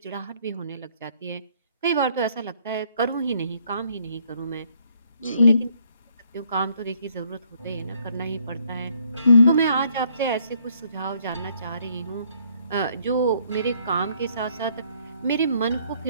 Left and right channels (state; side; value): inverted; both; correlation -0.67